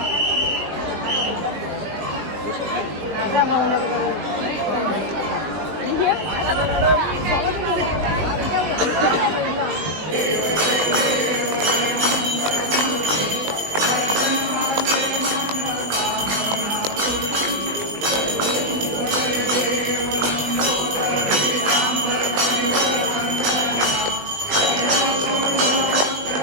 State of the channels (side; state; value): left; late; 20 ms